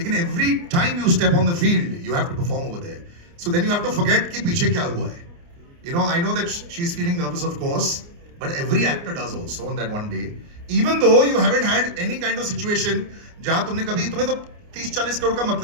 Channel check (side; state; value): left; late; 29 ms